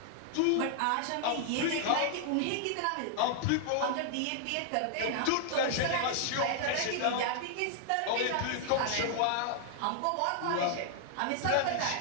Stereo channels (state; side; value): different; both; correlation 0.00